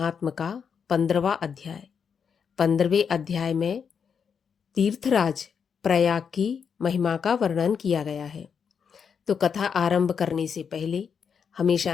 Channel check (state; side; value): quieter; right; 6.7 dB